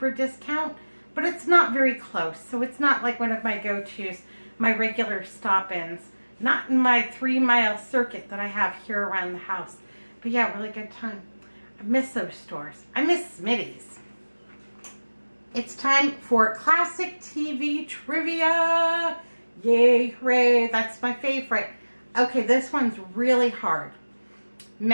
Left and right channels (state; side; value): inverted; both; correlation -1.00